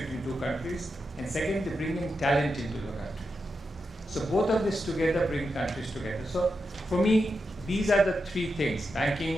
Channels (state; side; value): normal; both; correlation 0.87